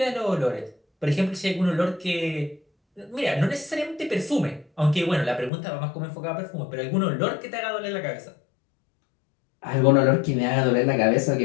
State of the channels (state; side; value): drops out; right; at 5.5 s